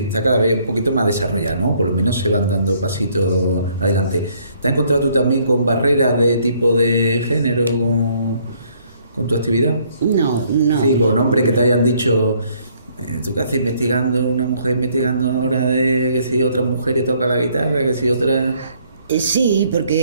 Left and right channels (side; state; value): both; inverted; correlation -0.65